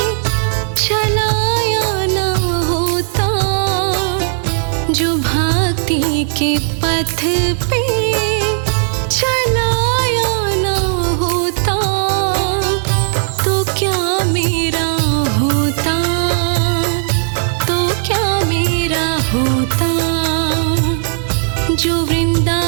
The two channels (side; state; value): left; silent; digital silence